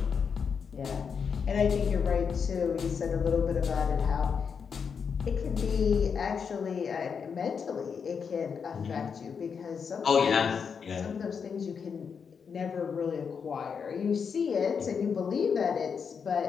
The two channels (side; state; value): right; quieter; 6.3 dB